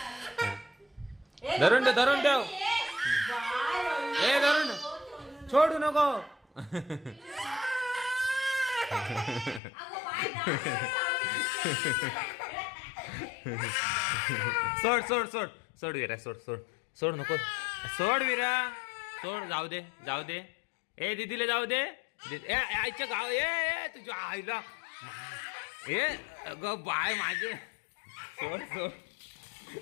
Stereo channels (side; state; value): right; drops out; at 9.6 s